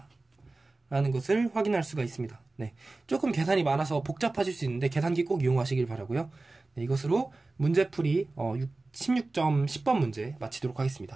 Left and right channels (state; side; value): quieter; left; 3.3 dB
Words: 라는 것을 확인할 수가 있습니다. 네, 조금 계산이 많아서 복잡하실 수 있는데 계산기 꼭 이용하시길 바라고요. 네, 이것으로 문제풀이 16점 10번 문제 마치도록